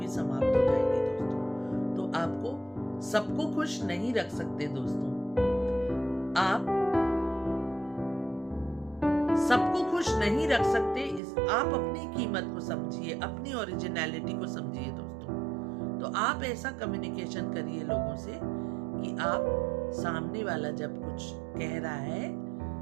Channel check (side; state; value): left; drops out; at 11.2 s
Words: समाप्त हो जाएगी दोस्तों। तो आपको सबको खुश नहीं रख सकते दोस्तों। आप सबको खुश नहीं रख सकते। आप अपनी कीमत को समझिए, अपनी ओरिजिनलिटी को समझिए दोस्तों। तो आप ऐसा कम्युनिकेशन करिए लोगों से कि आप सामने वाला जब कुछ कह रहा है